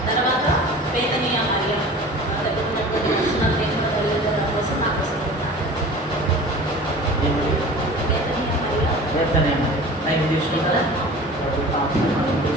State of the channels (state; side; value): normal; both; correlation 0.40